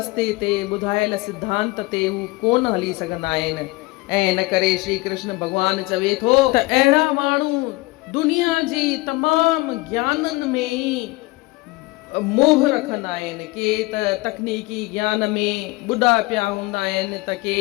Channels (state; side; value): quieter; right; 22.1 dB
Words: ते ॿुधायल सिद्धांत ते हू कोन हली सघंदा आहिनि। ऐं इन करे श्री कृष्ण भॻवान चवे थो त अहिड़ा माण्हू दुनिया जी तमामु ज्ञाननि में ई मोह रखंदा आहिनि। के त तकनीकी ज्ञान में ॿुॾा पिया हूंदा आहिनि, त के